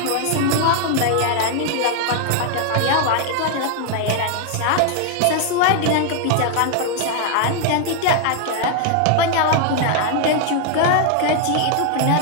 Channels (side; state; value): both; different; correlation 0.00